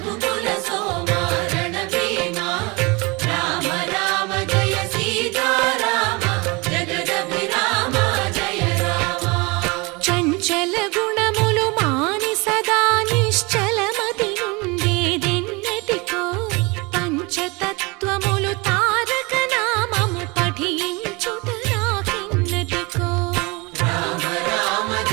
సోమ రణభీమ రామ రామ జయ సీతారామ జగదభిరామ జయ రామ చంచల గుణములు మాని సదా నిశ్చలమతి నుండేదెన్నటికో పంచతత్వములు తారక నామము పఠించుట నాకెన్నటికో రామ రామ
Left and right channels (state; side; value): quieter; left; 26.5 dB